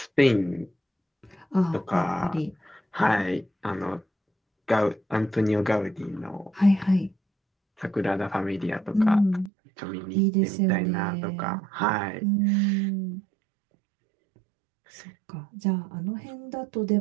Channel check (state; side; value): drops out; left; at 9.5 s